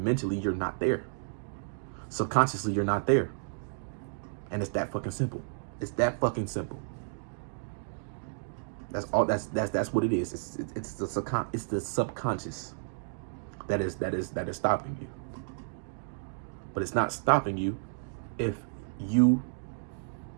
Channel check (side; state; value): left; silent; digital silence